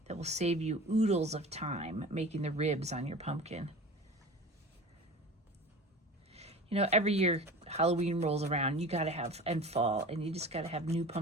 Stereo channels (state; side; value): normal; both; correlation 0.36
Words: that will save you oodles of time making the ribs on your pumpkin. You know, every year Halloween rolls around, you gotta have, and fall, and you just gotta have new